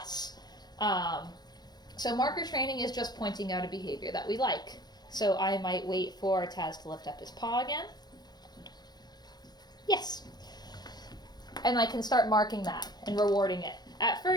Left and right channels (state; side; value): late; right; 0.20 ms